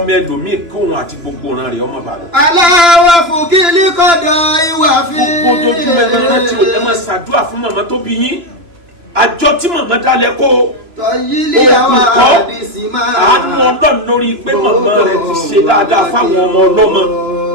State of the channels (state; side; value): late; left; 3.0 ms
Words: ẹlòmíì kí òun àti gbogbo ọ̀ràn rẹ̀ ọmọ bàlọ́. aláwọ̀ fòkèlè kọ̀dọ̀ ìwà fi. gbogbo ojoojúmọ́ ẹ máa rántí o ẹ máa ṣàdúrà fún màmá tó bí yín àjọ tí màmá dálẹ̀ kó tọ́yílì àwọn àdìsí máa. àánú Ọlọ́run lórí pé màmá rẹ̀ ti ṣe dáadáa fáwọn ọmọ ọlọ́mọ